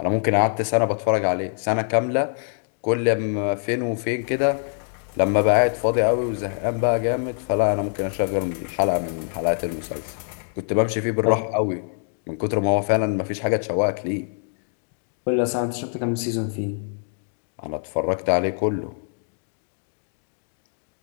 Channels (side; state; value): right; silent; 63 dB below the other